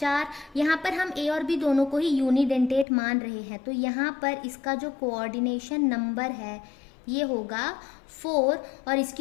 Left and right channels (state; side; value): drops out; right; at 2.9 s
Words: यहाँ पर हम A और B दोनों को ही यूनिडेंटेट मान रहे हैं, तो यहाँ पर इसका जो कोऑर्डिनेशन नंबर है ये होगा 4 और